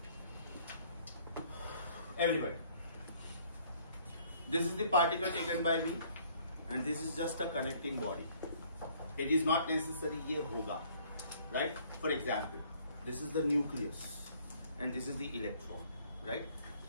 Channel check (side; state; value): both; inverted; correlation -0.60